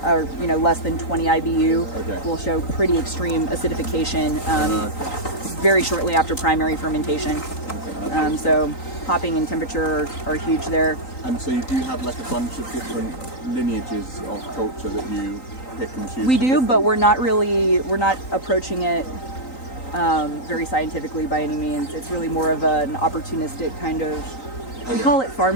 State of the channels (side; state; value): right; late; 3.9 ms